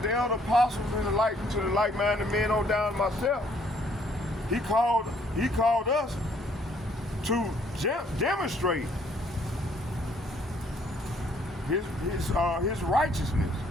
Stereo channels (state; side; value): normal; both; correlation 0.64